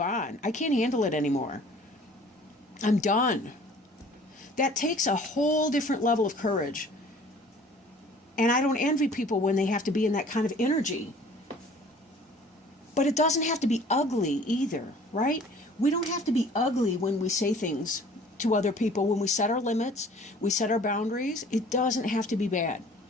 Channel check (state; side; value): normal; both; correlation 0.50